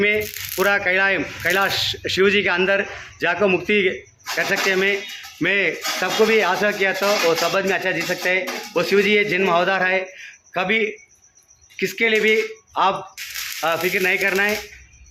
पूरा कैलाश शिव जी के अंदर जाकर मुक्ति कर सकते हैं। मैं सबको भी आशा किया तो वो सब आदमी अच्छा जी सकते हैं। वो शिव जी ये जन्म अवतार है, कभी किसके लिए भी आप फिक्र नहीं करना है।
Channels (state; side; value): identical; both; correlation 1.00